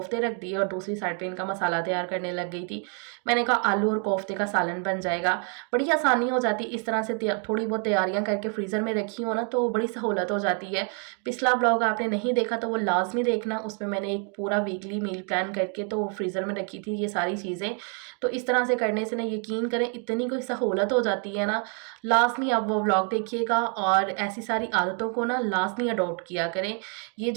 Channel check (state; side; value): quieter; left; 39.9 dB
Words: रख दिए और दूसरी साइड पे इनका मसाला तैयार करने लग गई थी। मैंने कहा आलू और कोफ्ते का सालन बन जाएगा, बड़ी आसानी हो जाती। इस तरह से थोड़ी बहुत तैयारियां करके फ्रीज़र में रखी हो ना तो बड़ी सहूलत हो जाती है। पिछला ब्लॉग आपने नहीं देखा तो वो लाजमी देखना, उसमें मैंने एक पूरा वीकली मील प्लान करके तो फ्रीज़र में रखी थी ये सारी चीज़ें। तो इस तरह से करने से ना यकीन करें इतनी कोई सहूलत हो जाती है ना। लाजमी आप वो व्लॉग देखिएगा और ऐसी सारी आदतों को ना लाजमी अडॉप्ट किया करें। ये